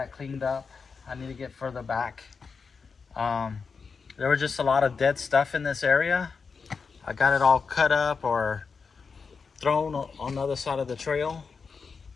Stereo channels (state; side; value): quieter; right; 5.2 dB